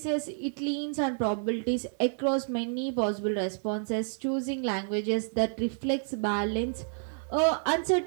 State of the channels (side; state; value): left; silent; digital silence